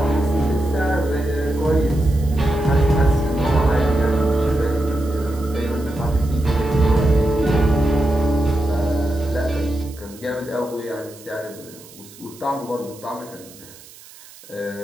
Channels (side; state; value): right; noise; hiss, 21 dB below the sound